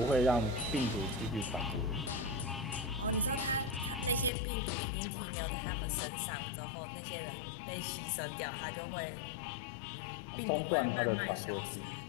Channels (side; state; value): right; drops out; at 4.3 s